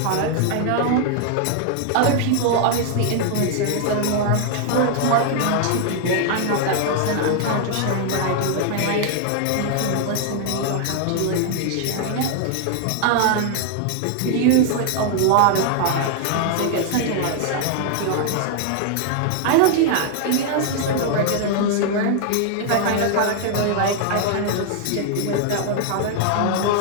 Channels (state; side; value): different; both; correlation 0.00